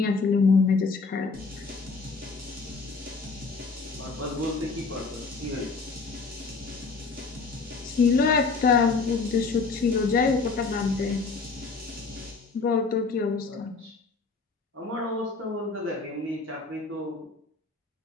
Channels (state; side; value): quieter; right; 4.3 dB